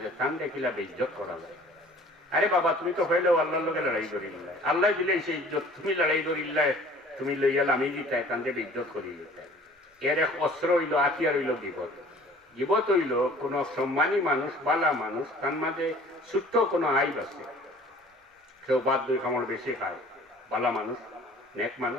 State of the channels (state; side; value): normal; both; correlation 0.49